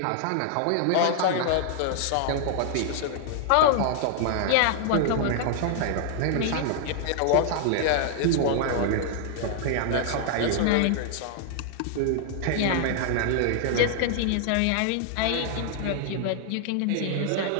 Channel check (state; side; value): different; both; correlation 0.00